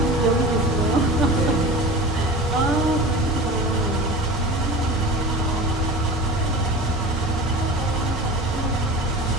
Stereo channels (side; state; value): both; normal; correlation 0.35